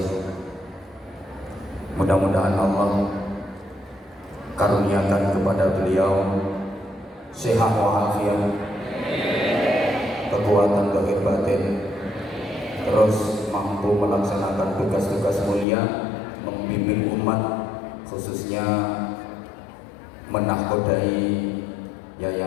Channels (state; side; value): drops out; right; at 15.7 s